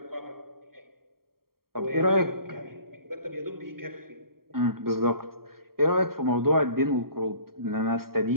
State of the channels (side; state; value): left; late; 0.93 ms